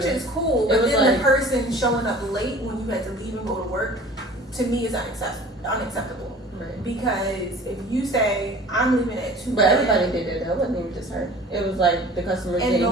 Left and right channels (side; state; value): both; normal; correlation 0.45